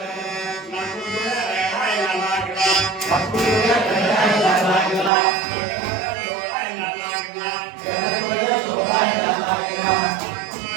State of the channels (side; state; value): left; drops out; at 5.1 s